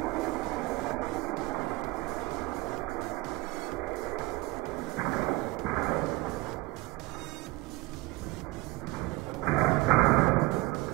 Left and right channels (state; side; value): quieter; left; 20.7 dB